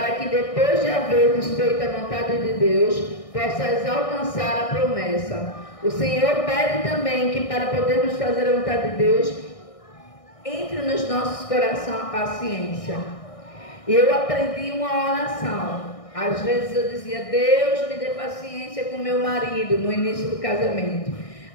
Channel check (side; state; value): right; late; 1.6 ms